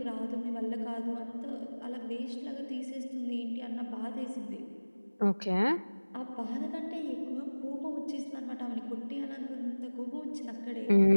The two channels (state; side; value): inverted; both; correlation -1.00